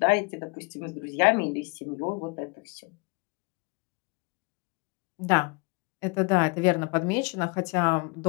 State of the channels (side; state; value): right; quieter; 29.5 dB